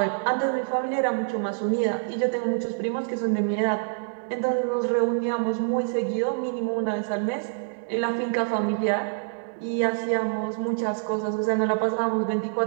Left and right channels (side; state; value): left; silent; digital silence